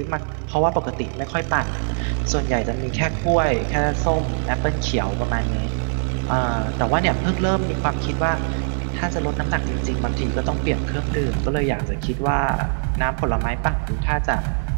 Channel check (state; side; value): silent; left; digital silence